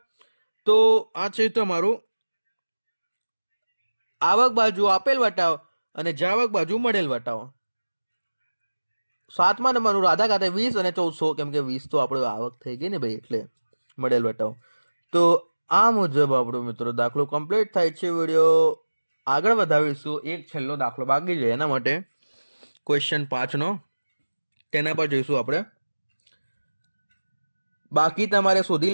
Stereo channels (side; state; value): both; inverted; correlation -1.00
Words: તો આ છે તમારું આવક બાજુ આપેલ વટાવ અને જાવક બાજુ મળેલ વટાવ. 7મા નંબરનું રાધા ખાતે 20 અને 1400, કેમ કે 20 તો આપણે આવક થઈ ગઈ ને ભાઈ એટલે મળેલ વટાવ. તો આ મુજબ આપણો મિત્રો દાખલો કમ્પ્લીટ થાય છે. વિડીયો આગળ વધાવીશું. એક છેલ્લો દાખલો બાકી છે, એના માટે ક્વેશ્ચન 5નો તેના પર જઈશું આપણે. બાકી તમારે શોધી